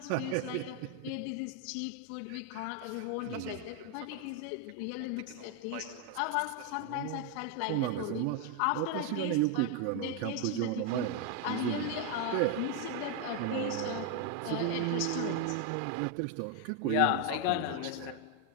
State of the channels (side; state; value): both; different; correlation 0.01